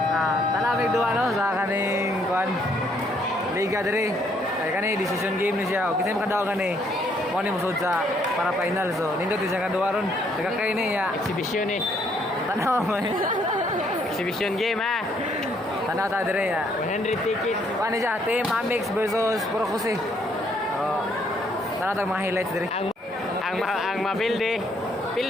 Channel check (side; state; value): both; normal; correlation 0.69